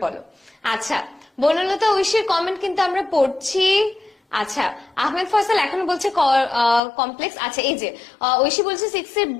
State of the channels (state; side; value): drops out; right; at 6.8 s